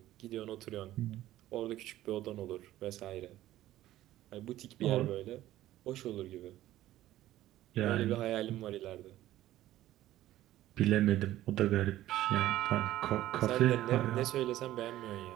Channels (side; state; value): left; quieter; 14.4 dB